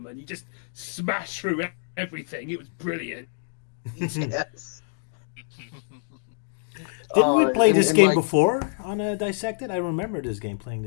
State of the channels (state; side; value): silent; right; digital silence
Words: You just smash through everything. It was brilliant. Yes. Didn't we play this game like, before on Dissected? I remember playing